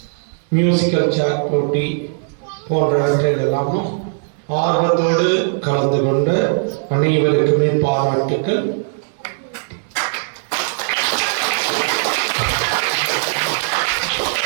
மியூசிக்கல் சேர் போட்டி போன்றவற்றில் எல்லாமும் ஆர்வத்தோடு கலந்து கொண்ட அனைவருக்குமே பாராட்டுக்கள்.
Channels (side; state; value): left; silent; digital silence